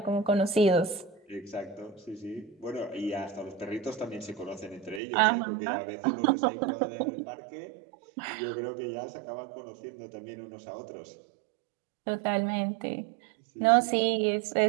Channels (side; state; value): left; drops out; at 5.0 s